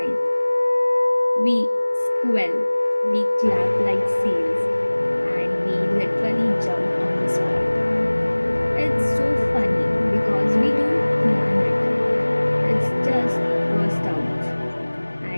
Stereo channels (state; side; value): inverted; both; correlation -1.00